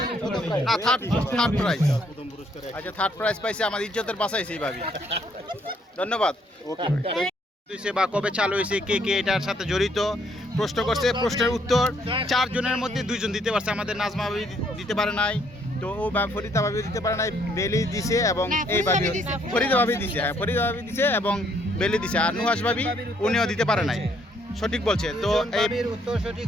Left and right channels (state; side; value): normal; both; correlation 0.68